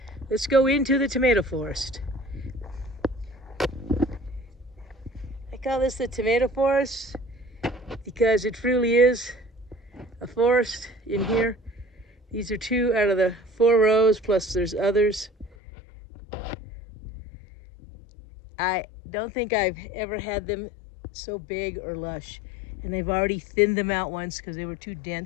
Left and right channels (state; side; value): drops out; right; at 15.6 s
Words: Let's go into the tomato forest. I call this the tomato forest because it truly is a forest in here. These are 2 out of the 4 rows, plus there's others. I don't think I've ever had them so big or lush. And I've already thinned them out once because they were too